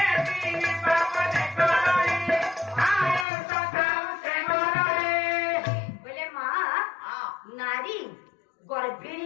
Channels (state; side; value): drops out; right; at 3.2 s